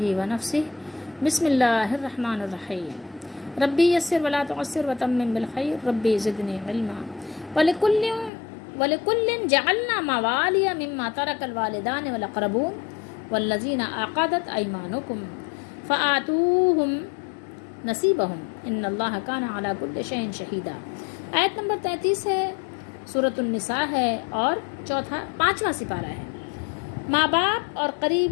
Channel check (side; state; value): right; drops out; at 8.3 s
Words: ونفسہ بسم اللہ الرحمن الرحیم ربی یسر ولا تعسر وتمم بالخیر ربی زدنی علما ولکل جعلنا موالی مما ترک الوالدان والاقربون والذین عقدت ایمانکم فآتوہم نصیبہم ان اللہ کان علی کل شیء شہیدا۔ آیت نمبر 33 ہے، سورۃ النساء ہے اور پانچواں سپارہ ہے۔ ماں باپ اور